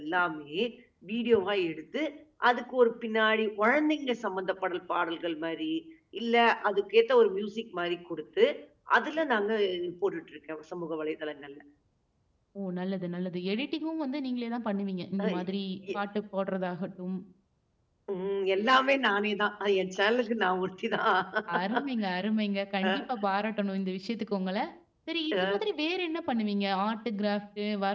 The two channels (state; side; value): identical; both; correlation 1.00